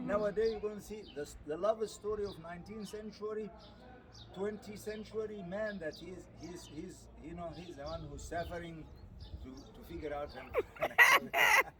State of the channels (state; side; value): identical; both; correlation 1.00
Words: you're going to see the love story of 19th century. 20th century man that he's you know he's the one who's suffering to figure out him.